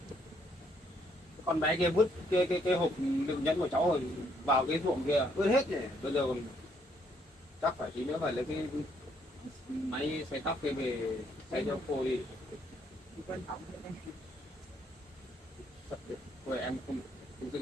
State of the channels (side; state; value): both; normal; correlation 0.70